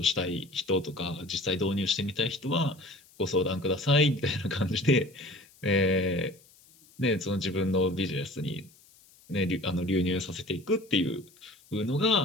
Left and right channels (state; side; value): noise; left; hiss, 27 dB below the sound